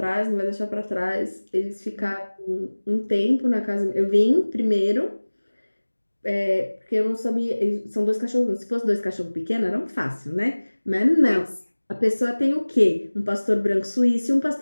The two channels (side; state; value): both; inverted; correlation -1.00